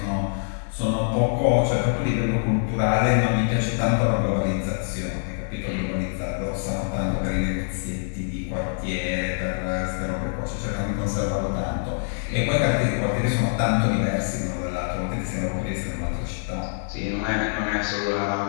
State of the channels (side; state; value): right; silent; 55 dB below the other